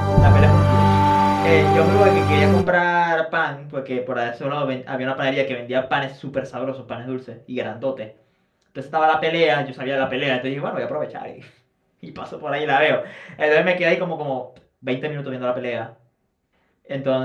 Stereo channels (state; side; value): identical; both; correlation 1.00